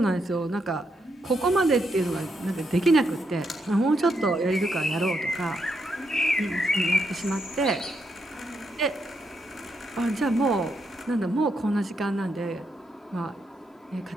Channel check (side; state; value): both; normal; correlation 0.80